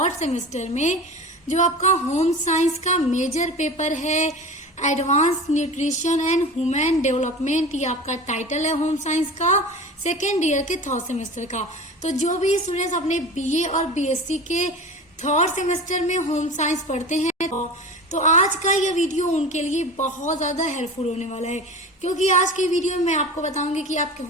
सेमेस्टर में जो आपका होम साइंस का मेजर पेपर है advance nutrition and human development, ये आपका टाइटल है होम साइंस का सेकेंड ईयर के थर्ड सेमेस्टर का। तो जो भी स्टूडेंट्स अपने बीए और बीएससी के थर्ड सेमेस्टर में होम साइंस पढ़ते हैं तो आज का यह वीडियो उनके लिए बहुत ज्यादा हेल्पफुल होने वाला है, क्योंकि आज की वीडियो में मैं आपको बताऊंगी कि आपके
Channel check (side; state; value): both; normal; correlation 0.34